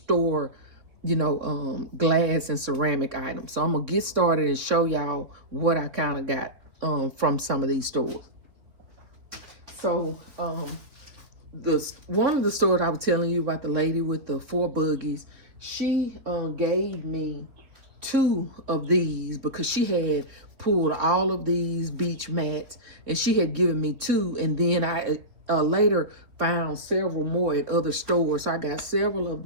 glass and ceramic items. So I'm gonna get started and show y'all what I kind of got from some of these stores. So one of the stores I was telling you about, the lady with the 4 buggies, she gave me 2 of these, because she had pulled all of these beach mats, and she had given me 2, and then I later found several more at other stores. So I got several of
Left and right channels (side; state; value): left; late; 3.7 ms